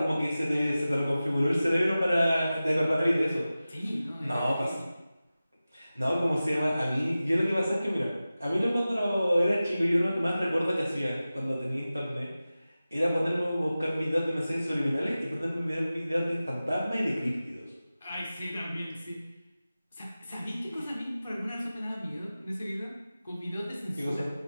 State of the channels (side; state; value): both; inverted; correlation -0.96